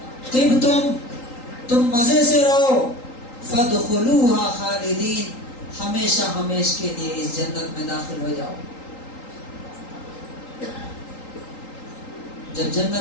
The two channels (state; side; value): late; right; 3.8 ms